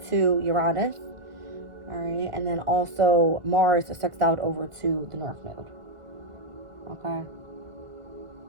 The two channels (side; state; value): left; late; 1.4 ms